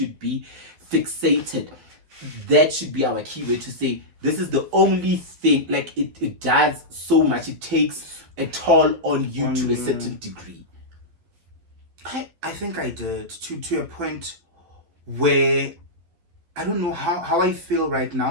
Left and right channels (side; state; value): left; late; 11 ms